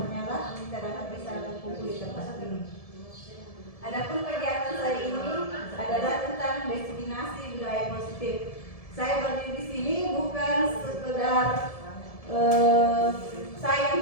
lah kita dapat bisa berkumpul di tempat ini. Adapun kegiatan saya ini adalah tentang destinasi budaya positif. Saya berdiri di sini bukan sekedar saya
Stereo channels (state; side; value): late; right; 1.7 ms